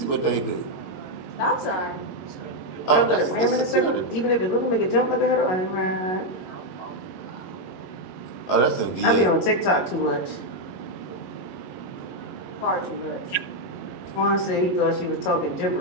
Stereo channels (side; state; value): right; late; 22 ms